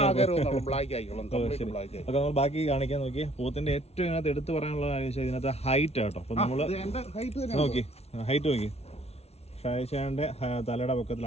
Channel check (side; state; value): right; late; 0.31 ms